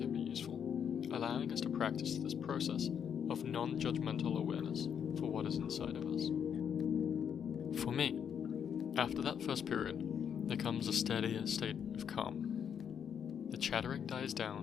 be useful, allowing us to practice this process of non-judgmental awareness for what is inside of us. For me, after that first period, there comes a steadier state of calm. The chattering dies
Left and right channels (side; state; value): right; quieter; 8.0 dB